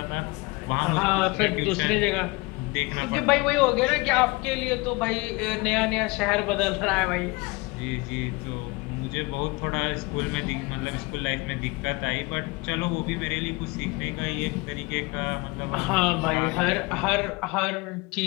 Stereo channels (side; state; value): right; quieter; 25.2 dB